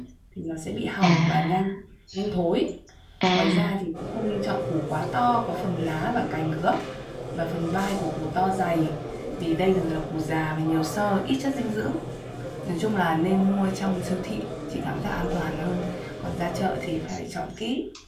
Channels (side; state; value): both; identical; correlation 1.00